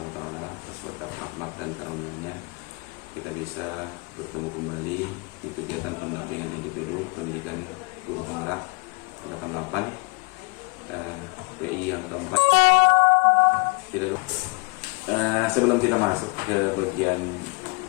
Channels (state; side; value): quieter; right; 29.5 dB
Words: wa taala atas berkat rahmat dan karunia-Nya kita bisa bertemu kembali di kegiatan pendampingan individu pendidikan guru penggerak 88 PI yang keempat. Sebelum kita masuk ke bagian